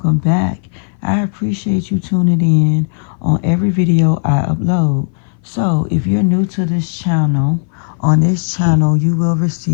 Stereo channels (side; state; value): right; silent; 59 dB below the other